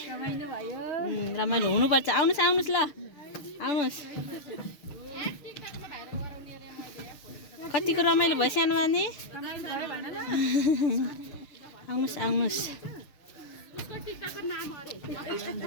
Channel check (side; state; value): right; late; 6.5 ms